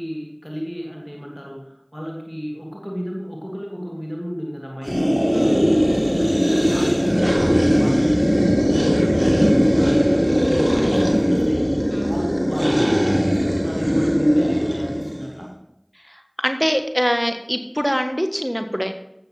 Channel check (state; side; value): identical; both; correlation 1.00